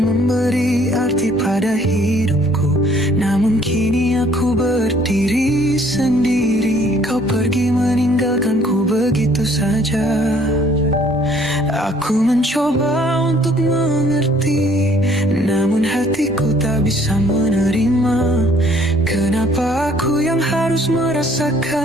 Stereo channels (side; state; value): both; normal; correlation 0.61